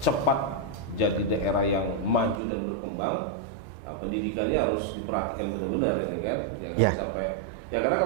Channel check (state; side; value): drops out; left; at 2.4 s